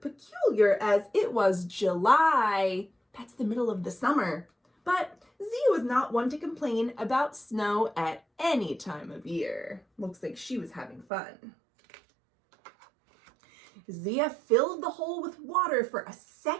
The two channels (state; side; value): drops out; left; at 11.1 s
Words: peculiar as it was July. That's the middle of the summer. But Zia was not one to complain about snow at any time of year. Looks like she was having fun. Zia filled the hole with water for a